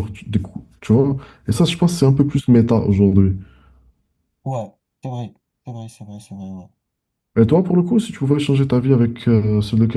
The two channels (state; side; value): identical; both; correlation 1.00